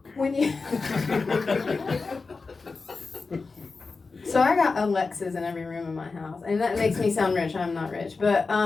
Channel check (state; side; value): quieter; right; 4.2 dB